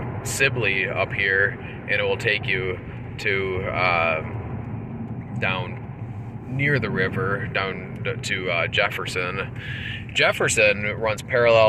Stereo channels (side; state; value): both; identical; correlation 1.00